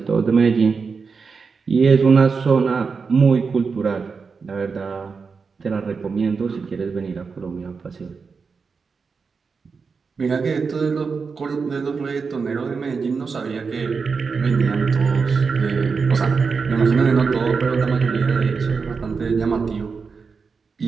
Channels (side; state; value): left; quieter; 5.1 dB